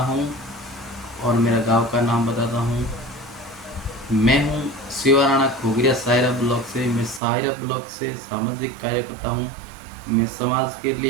और मेरा गांव का नाम बताता हूँ। मैं हूँ शिवा राणा खोगरिया सायरा ब्लॉक से। मैं सायरा ब्लॉक से सामाजिक कार्य करता हूँ। मैं समाज के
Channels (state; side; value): drops out; left; at 7.2 s